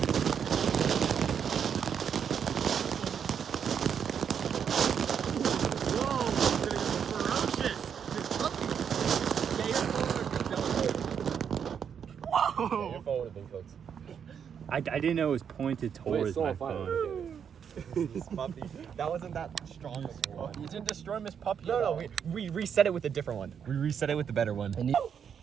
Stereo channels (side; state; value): left; quieter; 7.7 dB